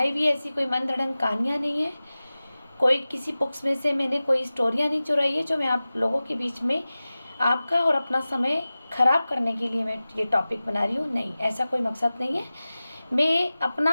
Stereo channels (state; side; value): inverted; both; correlation -0.96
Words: हुई ऐसी कोई मन धड़ंग कहानियाँ नहीं है। कोई किसी बुक्स में से मैंने कोई स्टोरियाँ नहीं चुराई है जो मैं आप लोगों के बीच में आपका और अपना समय ख़राब करने के लिए मैं ये टॉपिक बना रही हूँ। नहीं, ऐसा कोई मकसद नहीं है। मैं